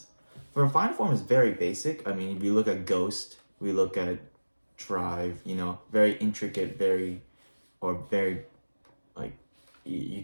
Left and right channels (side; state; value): both; inverted; correlation -1.00